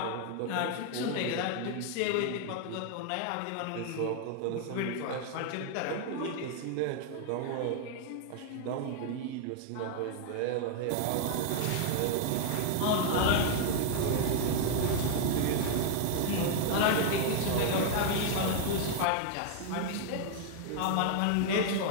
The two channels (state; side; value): different; both; correlation 0.00